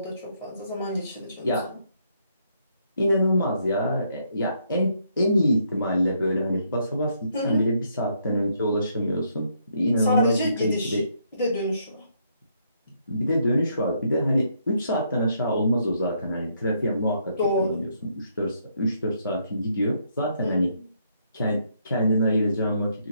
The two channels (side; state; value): both; inverted; correlation -0.73